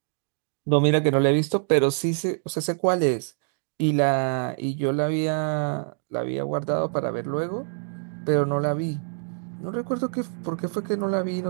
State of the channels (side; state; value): left; silent; 61 dB below the other